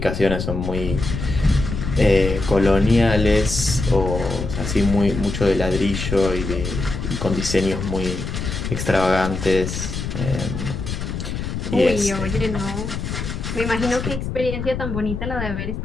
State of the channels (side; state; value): left; noise; rumble, 5 dB below the sound